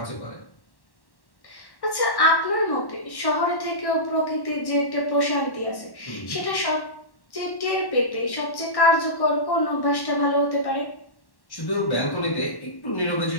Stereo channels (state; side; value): late; right; 1.1 ms